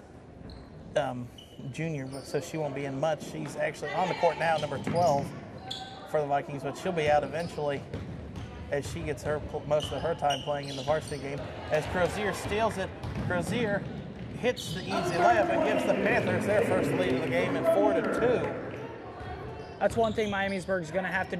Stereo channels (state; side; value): identical; both; correlation 1.00